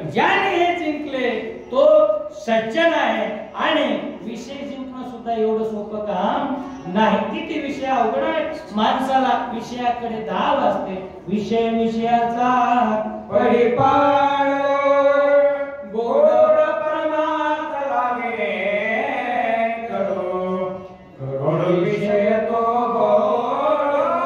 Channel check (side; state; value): both; identical; correlation 1.00